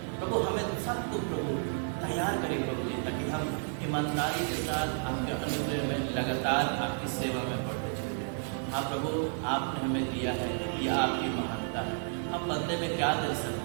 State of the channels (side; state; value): left; silent; 57 dB below the other